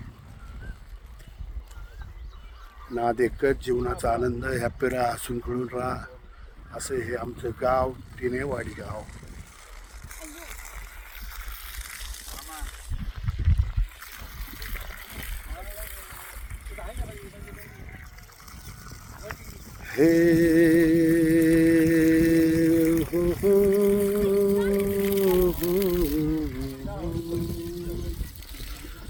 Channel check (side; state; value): both; identical; correlation 1.00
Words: नाद एकच, जीवनाचा आनंद, हॅपी राहा, हसून खेळून राहा, असं हे आमचं गाव तिनेवाडी गाव. हे हो हो हो